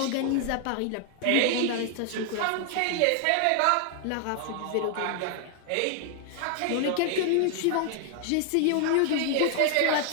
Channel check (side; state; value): both; different; correlation 0.00